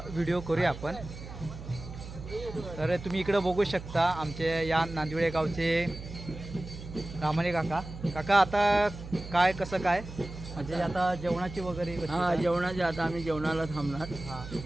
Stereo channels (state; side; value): noise; right; hum, 12 dB below the sound